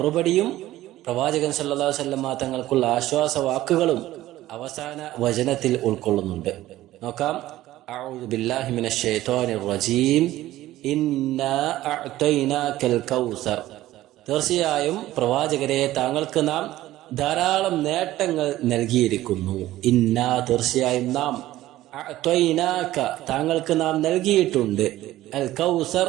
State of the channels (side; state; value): left; quieter; 15.3 dB